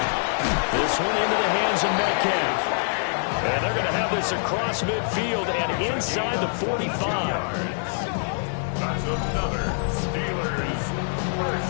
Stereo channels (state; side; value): silent; right; 62 dB below the other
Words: This one into the hands of Metcalf. And they're going to have this across midfield and inside the 45. That's another Steelers